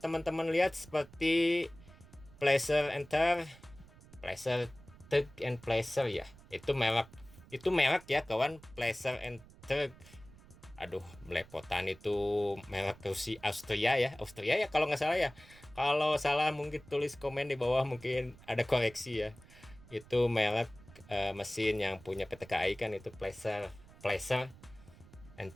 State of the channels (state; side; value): noise; right; rumble, 22 dB below the sound